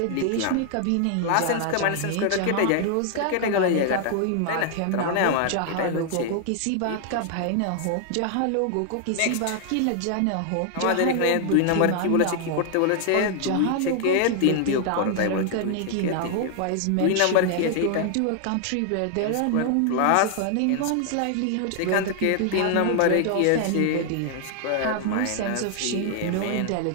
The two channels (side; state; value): both; different; correlation 0.00